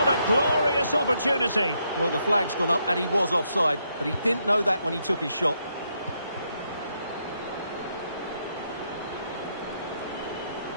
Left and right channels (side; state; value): both; inverted; correlation -0.78